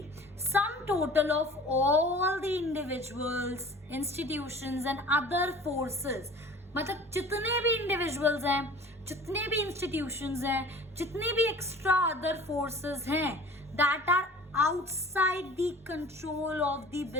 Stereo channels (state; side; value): normal; both; correlation 0.44